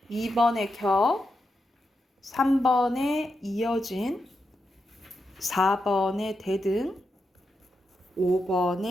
2번에 겨, 3번에 이어진, 4번에 대등,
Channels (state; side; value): normal; both; correlation 0.86